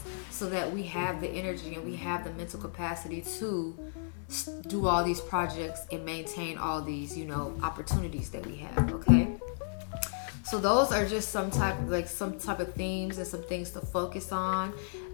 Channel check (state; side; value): silent; right; digital silence